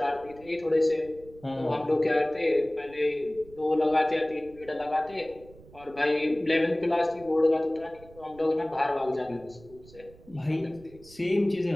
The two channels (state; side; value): noise; right; rumble, 22 dB below the sound